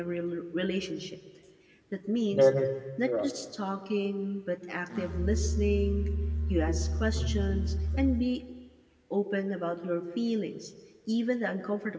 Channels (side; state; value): both; identical; correlation 1.00